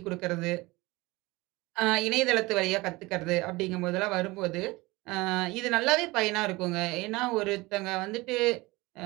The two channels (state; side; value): quieter; left; 21.9 dB